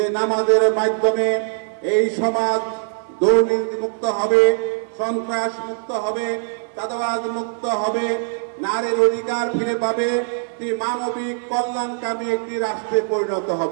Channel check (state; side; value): silent; left; 58 dB below the other